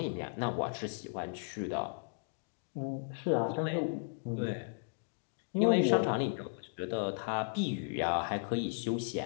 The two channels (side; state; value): right; silent; digital silence